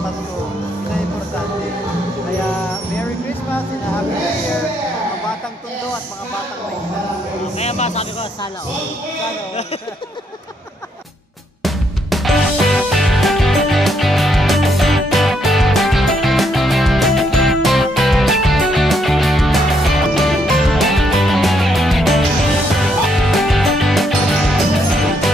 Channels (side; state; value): both; normal; correlation 0.74